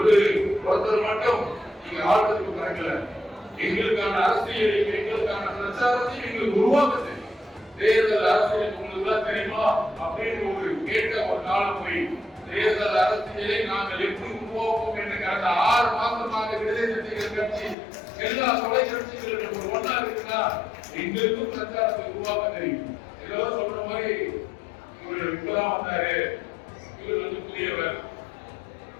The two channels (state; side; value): drops out; right; at 17.8 s